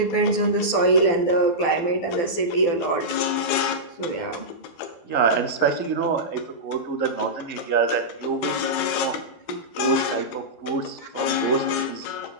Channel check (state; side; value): late; right; 12 ms